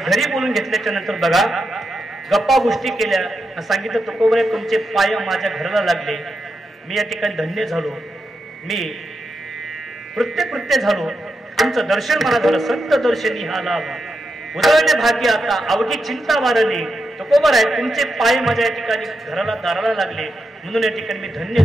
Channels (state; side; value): normal; both; correlation 0.86